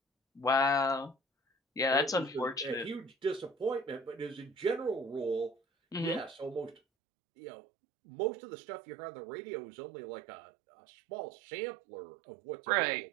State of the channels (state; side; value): drops out; left; at 6.8 s